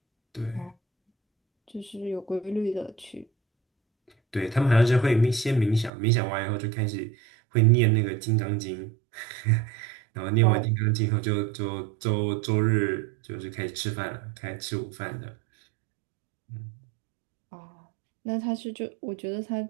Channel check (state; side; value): drops out; left; at 5.9 s